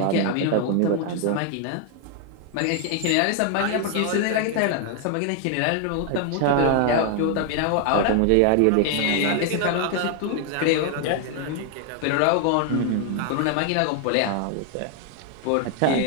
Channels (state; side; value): different; both; correlation 0.00